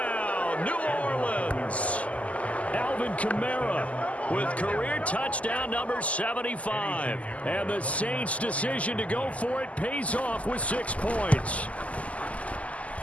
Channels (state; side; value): late; right; 0.069 ms